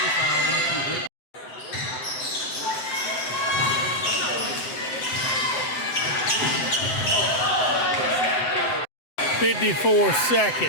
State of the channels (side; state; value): right; late; 7.8 ms